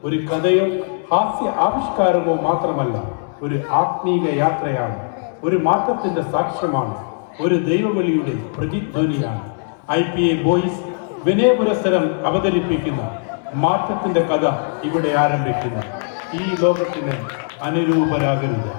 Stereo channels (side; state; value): right; silent; digital silence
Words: ഒരു കഥയോ ഹാസ്യ ആവിഷ്കാരമോ മാത്രമല്ല, ഒരു ആത്മീക യാത്രയാണ്, ഒരു മാറ്റത്തിന്റെ സാക്ഷ്യമാണ്, ഒരു ദൈവവിളിയുടെ പ്രതിധ്വനിയാണ്. IPA ബോയ്സ് വിനയപുരസ്സരം അവതരിപ്പിക്കുന്ന മാറ്റത്തിന്റെ കഥ ഇവിടെ ആരംഭിക്കുന്നു. ഈ ലോകത്തിന് അനുരൂപരാകരുത്.